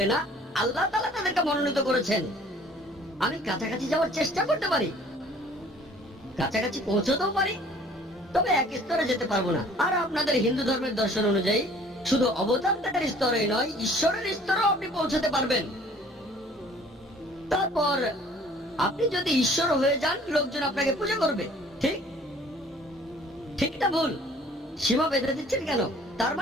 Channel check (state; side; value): normal; both; correlation 0.53